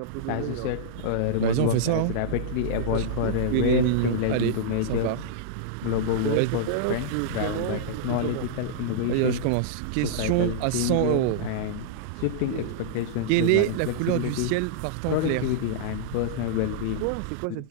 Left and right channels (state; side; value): different; both; correlation -0.02